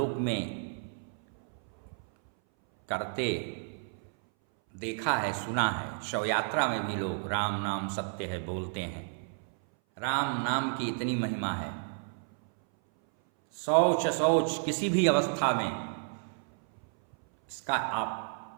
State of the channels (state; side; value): silent; left; 57 dB below the other